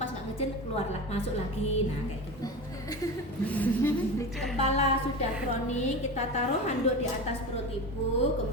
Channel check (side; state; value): both; normal; correlation 0.27